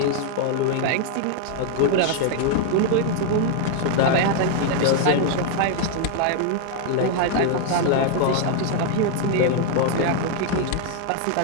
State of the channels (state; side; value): different; both; correlation 0.00